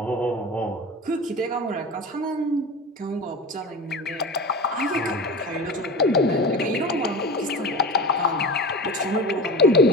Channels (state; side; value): normal; both; correlation 0.31